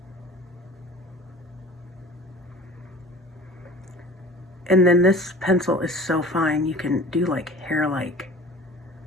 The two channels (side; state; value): both; normal; correlation 0.42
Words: And then this pencil is so fine, you can do like hair-like.